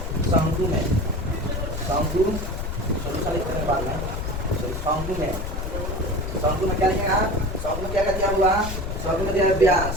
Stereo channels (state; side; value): noise; left; rumble, 4 dB below the sound